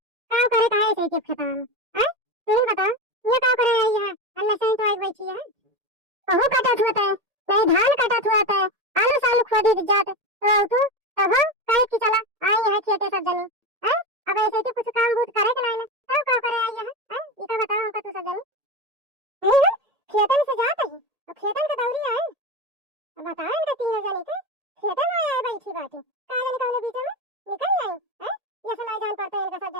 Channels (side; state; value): left; late; 1.8 ms